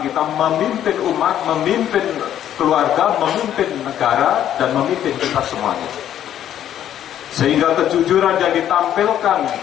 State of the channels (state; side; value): quieter; right; 10.8 dB